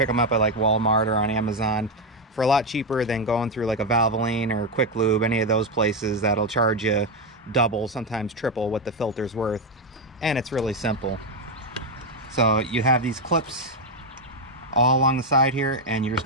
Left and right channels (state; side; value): normal; both; correlation 0.06